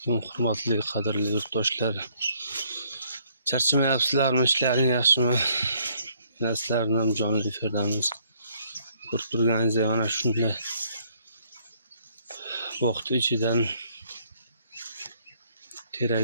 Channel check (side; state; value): both; inverted; correlation -0.65